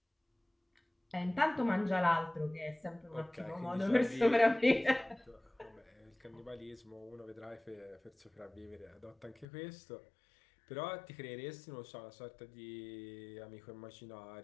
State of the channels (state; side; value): drops out; right; at 9.5 s